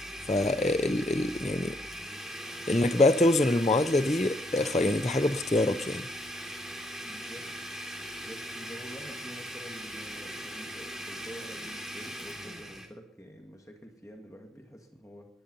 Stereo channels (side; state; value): both; normal; correlation 0.72